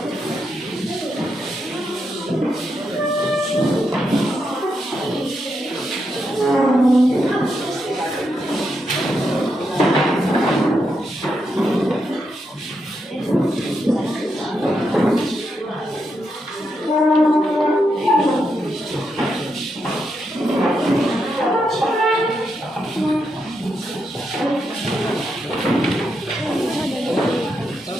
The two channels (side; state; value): both; normal; correlation 0.82